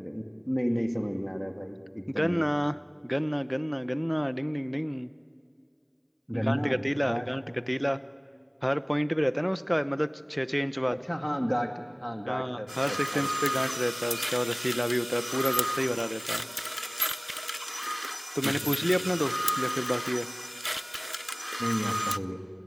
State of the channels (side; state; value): both; identical; correlation 1.00